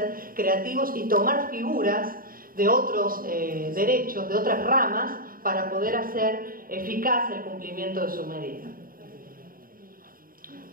creativos y tomar figuras de otros derechos, de otras ramas, para poder hacer eficaz el cumplimiento de su medida.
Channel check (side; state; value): left; late; 0.41 ms